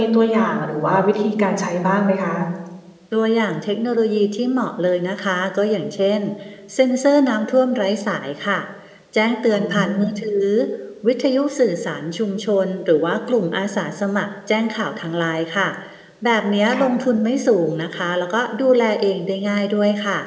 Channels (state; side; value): identical; both; correlation 1.00